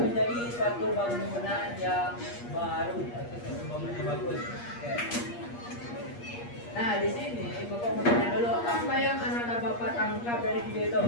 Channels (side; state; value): right; late; 8.5 ms